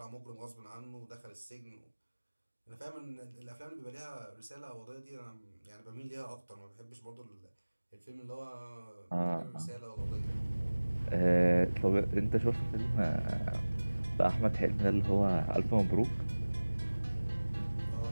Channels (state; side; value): inverted; both; correlation -1.00